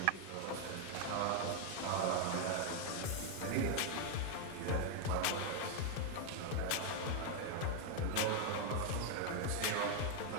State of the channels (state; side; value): different; both; correlation 0.01